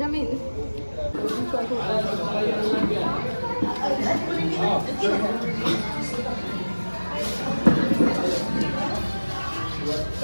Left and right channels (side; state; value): both; inverted; correlation -1.00